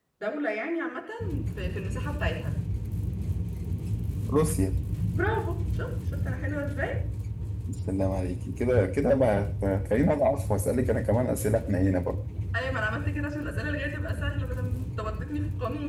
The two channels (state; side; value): identical; both; correlation 1.00